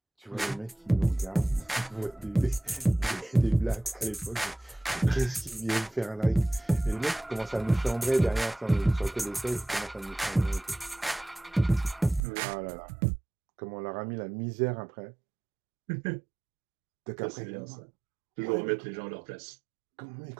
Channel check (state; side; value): drops out; left; at 12.2 s